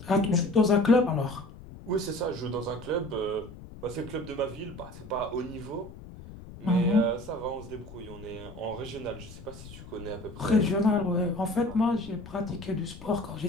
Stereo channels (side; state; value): left; noise; rumble, 16 dB below the sound